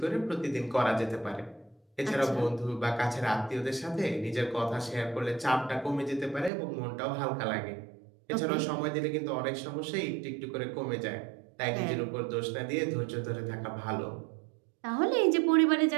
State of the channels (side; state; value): left; drops out; at 6.5 s